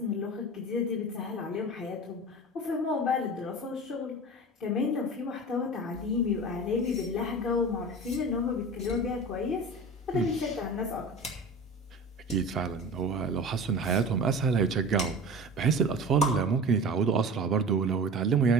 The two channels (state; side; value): normal; both; correlation 0.34